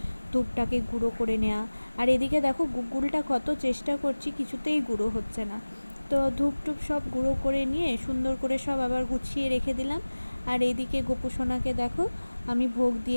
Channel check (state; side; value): inverted; both; correlation -1.00